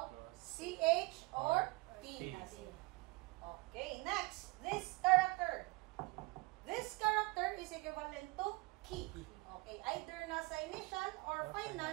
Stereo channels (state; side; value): quieter; left; 24.6 dB